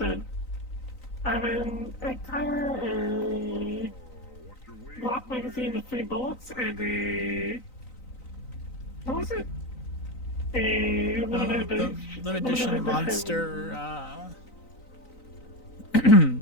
I'm in a tire, a block magazine with 3 bullets, and a... What was it? A limited Edition monster,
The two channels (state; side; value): late; right; 3.9 ms